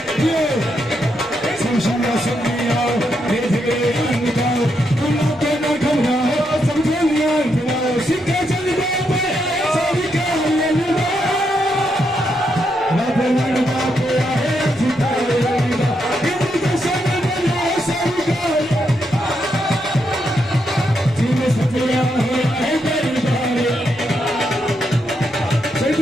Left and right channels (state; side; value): normal; both; correlation 0.80